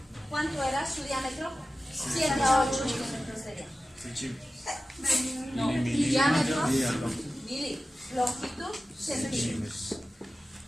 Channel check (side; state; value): both; normal; correlation 0.95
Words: ¿Cuánto era su diámetro? 7 a 8 milímetros de diámetro. No, diámetro, milímetros. Longitud, centímetros.